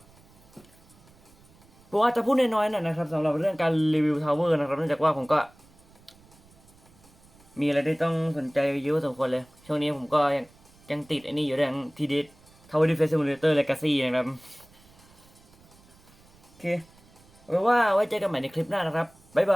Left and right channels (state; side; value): noise; right; rumble, 27 dB below the sound